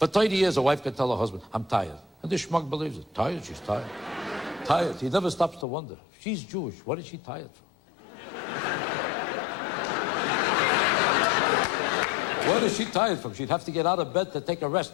30 years, a wife can tell her husband, I'm tired. And this schmuck believes it. Tired? She's tired. Tired. He never stops to wonder. She's Jewish. What is she tired from? What is she tired from? She'd have to get out of bed to take a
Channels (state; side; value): drops out; right; at 5.7 s